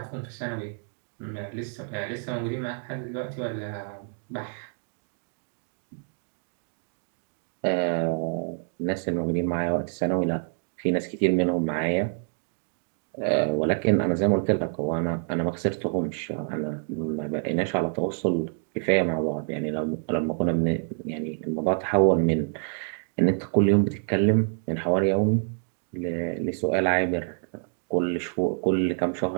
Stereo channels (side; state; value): left; silent; 60 dB below the other